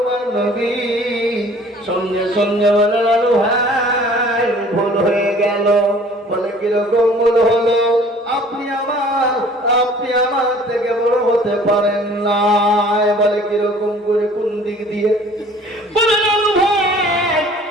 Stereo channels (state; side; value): normal; both; correlation 0.52